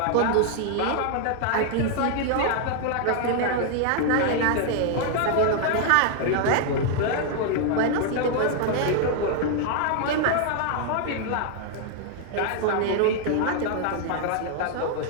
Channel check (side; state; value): both; different; correlation 0.00